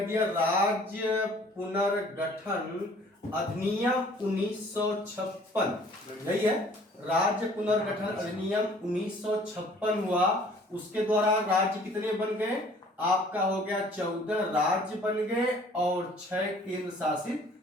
दिया राज्य पुनर्गठन अधिनियम 1956, यही है, राज्य पुनर्गठन अधिनियम 1956 हुआ। उसके द्वारा राज्य कितने बन गए? आपका हो गया 14 राज्य बन गए और 6 केंद्र शासित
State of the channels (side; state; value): both; normal; correlation 0.54